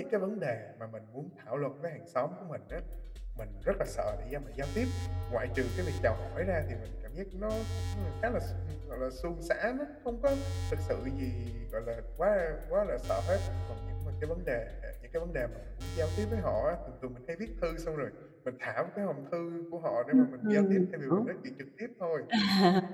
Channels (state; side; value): identical; both; correlation 1.00